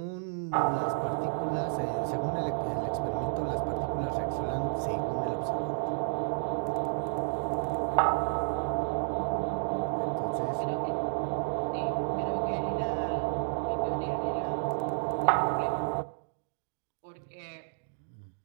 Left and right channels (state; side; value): silent; left; digital silence